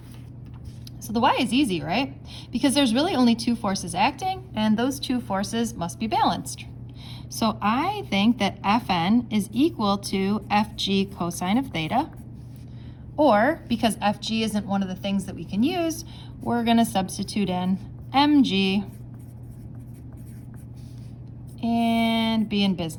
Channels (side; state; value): both; identical; correlation 1.00